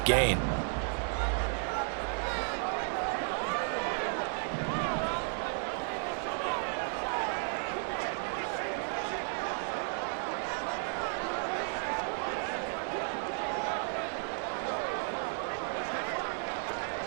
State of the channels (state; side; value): silent; left; 55 dB below the other